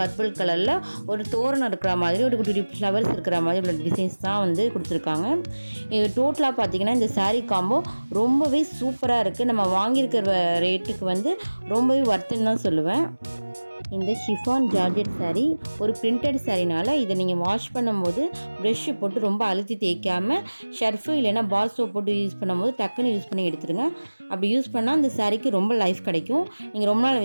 கலரில் ஒரு தோரணம் இருக்கிற மாதிரி ஒரு குட்டி ஃப்ளவர்ஸ் இருக்கிற மாதிரி உள்ள டிசைன்ஸ் தான் கொடுத்துருக்காங்க. இது டோட்டலாக பார்த்தீங்கன்னா இந்த சாரீ காம்போ ரொம்பவே சூப்பராக இருக்குது. நம்ம வாங்கியிருக்கிற ரேட்டுக்கு ரொம்பவே ஒர்த்துன்னு தான் சொல்லுவேன். இந்த ஷிஃபான் ஜார்ஜெட் சாரீ ஒரு பிரிண்டட் சாரீனால இதை நீங்கள் வாஷ் பண்ணும்போது ப்ரெஷ்ஷு போட்டு ரொம்ப அழுத்தி தேய்க்காமல் ஷர்ஃபு இல்லைன்னா பால் சோப் போட்டு யூஸ் பண்ணும்போது டக்குன்னு யூஸ் பண்ணி எடுத்துருங்க. அப்படி யூஸ் பண்ணால் அந்த சாரீக்கு ரொம்ப லைஃப் கிடைக்கும். நீங்கள் ரொம்ப நாள்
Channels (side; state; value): both; inverted; correlation -1.00